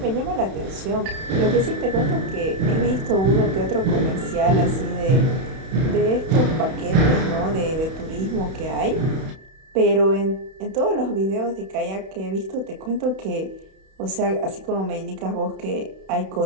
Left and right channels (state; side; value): late; left; 31 ms